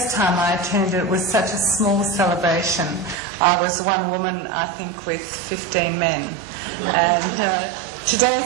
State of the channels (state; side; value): drops out; left; at 3.2 s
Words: time I attended it was such a small celebration. I was one woman, I think, with 15 men, and today